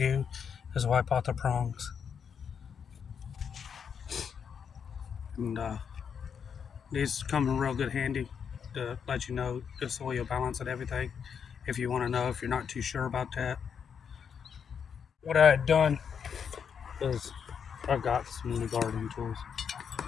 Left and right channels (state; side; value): quieter; right; 7.1 dB